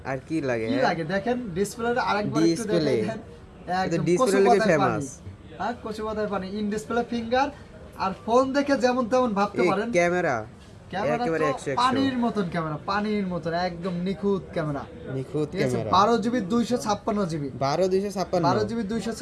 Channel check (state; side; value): identical; both; correlation 1.00